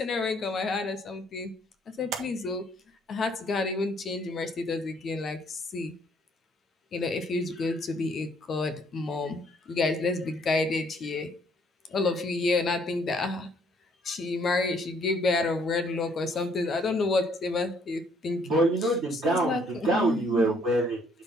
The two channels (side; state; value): both; normal; correlation 0.65